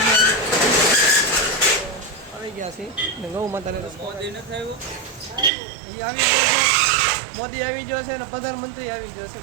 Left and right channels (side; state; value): left; drops out; at 5.5 s